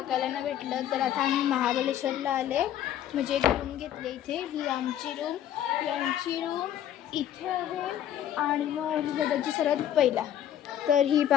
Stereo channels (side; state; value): right; quieter; 10.9 dB